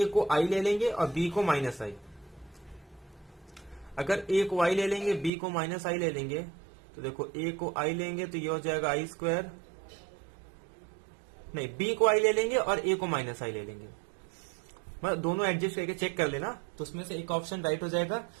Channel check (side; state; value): left; drops out; at 5.3 s